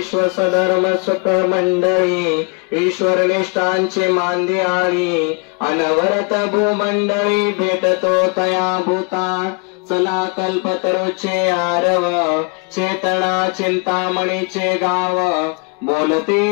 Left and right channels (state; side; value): quieter; right; 34.5 dB